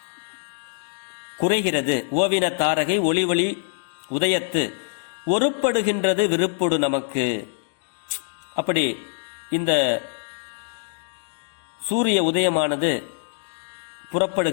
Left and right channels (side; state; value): right; silent; digital silence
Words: குறைகிறது. ஓவின தாரகை ஒளி ஒளி உதயத்து ஒருப்படுகின்றது விருப்பொடு நமக்கு. அப்படி இந்த சூரிய உதயமானது